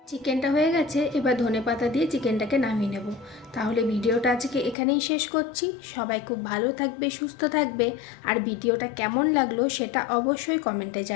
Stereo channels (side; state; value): right; drops out; at 4.8 s